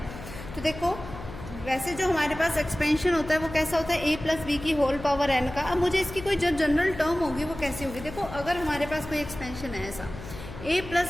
तो देखो वैसे जो हमारे पास एक्सपेंशन होता है वो कैसा होता है, a प्लस बी की होल पावर n का। अब मुझे इसकी कोई जो जनरल टर्म होगी वो कैसी होगी। देखो अगर हमारे पास कोई एक्सपेंशन है ऐसा a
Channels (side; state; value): left; noise; hum, 12 dB below the sound